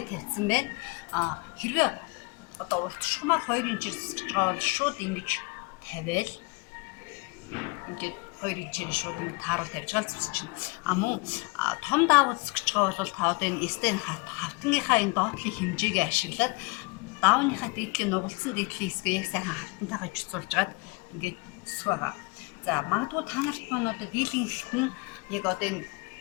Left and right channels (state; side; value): quieter; right; 27.7 dB